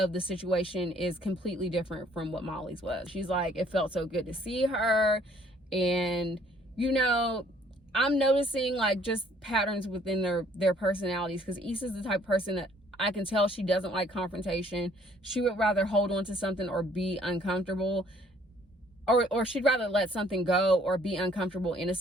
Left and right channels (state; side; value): normal; both; correlation 0.60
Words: the situation is completely different from what Molly's was. She's like, it felt so good to see her. And, you know, I'm noticing like just patterns within their personalities, because Issa's the type of person that I can tell she doesn't like confrontation. She would rather hold on to something or be uncomfortable, or she'd rather let something go or be uncomfortable in a